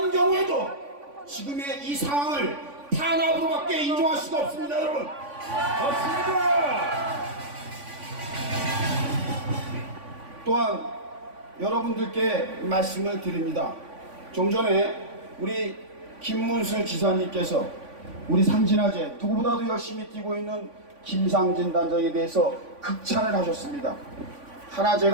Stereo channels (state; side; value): late; left; 3.5 ms